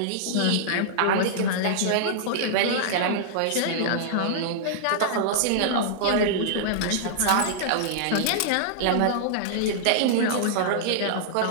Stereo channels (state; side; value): different; both; correlation -0.02